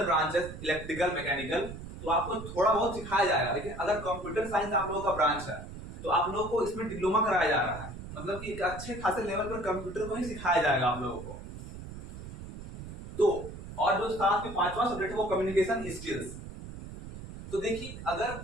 ब्रांचेस इलेक्ट्रिकल मैकेनिकल तो आपको थोड़ा बहुत सिखाया जाएगा, लेकिन अगर कंप्यूटर साइंस आप लोगों का ब्रांच है तो आप लोगों को इसमें डिप्लोमा कराया जा रहा है, मतलब कि एक अच्छे खासे लेवल पर कंप्यूटर को ही सिखाया जाएगा आप लोगों को। तो और जो साथ में पांचवा सब्जेक्ट है वो कम्युनिकेशन स्किल्स। तो देखिए अगर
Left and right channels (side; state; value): right; noise; rumble, 11 dB below the sound